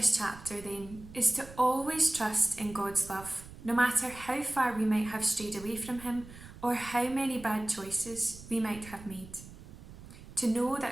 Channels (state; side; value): noise; right; rumble, 17 dB below the sound